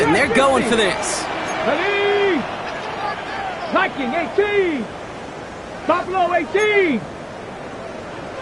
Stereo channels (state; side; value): identical; both; correlation 1.00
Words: They're going for this. Ready? Viking 18. Buffalo 18.